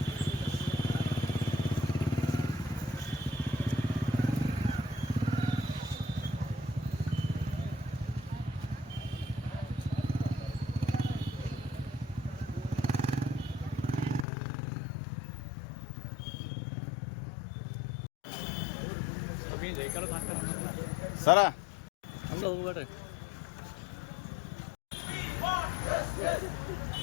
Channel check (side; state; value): right; drops out; at 14.2 s